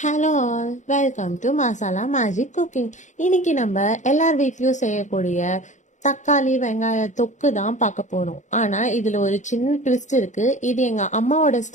Hello all, welcome to masala magic cooking. இன்னைக்கு நம்ம எல்லார் வீட்லேயும் செய்யக்கூடிய தக்காளி வெங்காய தொக்கு தான் பார்க்க போகிறோம். ஆனால் இதில் ஒரு சின்ன ட்விஸ்ட் இருக்குது. இது எங்கள் அம்மாவோட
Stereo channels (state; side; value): late; right; 0.35 ms